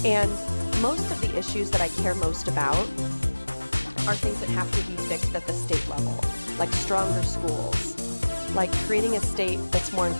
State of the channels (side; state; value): both; inverted; correlation -1.00